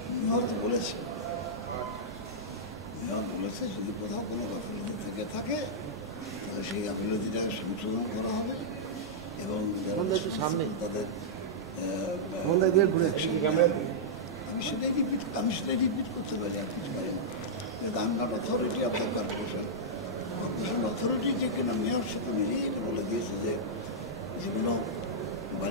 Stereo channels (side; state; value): both; normal; correlation -0.09